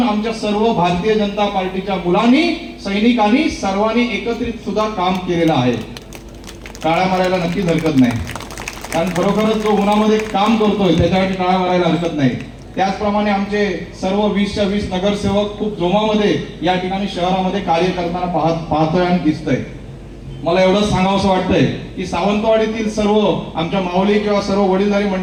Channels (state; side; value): identical; both; correlation 1.00